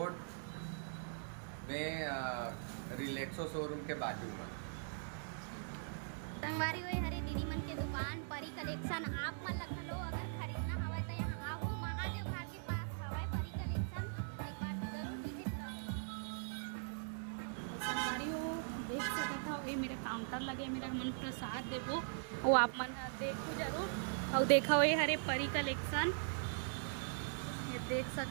में रिलैक्सो शोरूम के बाजू में। ठीक है संगवारी हुई हरी दीदी मन के दुकान परी कलेक्शन। आप मन लखा लो अगर खरीदना हवा तो यहाँ आओ, महादेव घाट के पास हवा परी कलेक्शन, एक बार जरूर विजिट करो। और संगवारी हो देख सकता हो, ये मेरा काउंटर लगे, मेरा हमन प्रसाद देवो वो आप मन देखो जरूर। और देखो ये हरे परी कलेक्शन, ये देख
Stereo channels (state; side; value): silent; left; digital silence